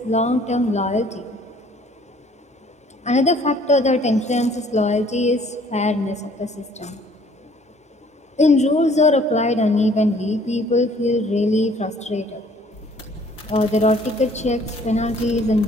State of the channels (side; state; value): both; normal; correlation 0.58